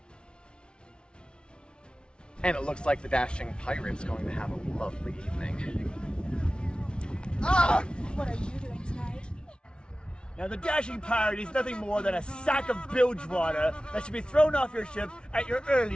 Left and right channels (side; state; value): right; late; 0.056 ms